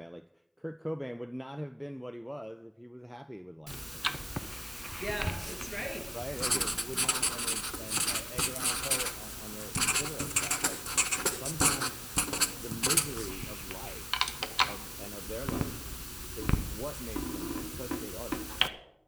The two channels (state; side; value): identical; both; correlation 1.00